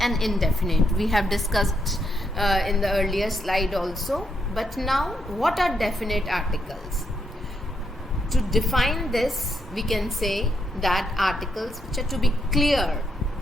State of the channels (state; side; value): normal; both; correlation 0.78